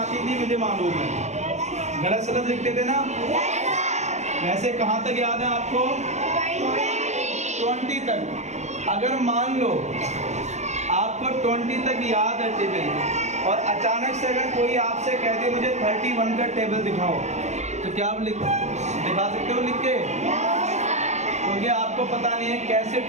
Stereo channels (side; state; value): left; late; 0.33 ms